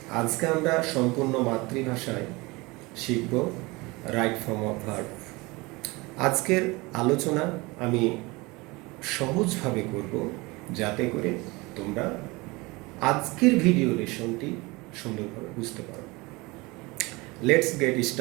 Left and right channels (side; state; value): left; quieter; 24.0 dB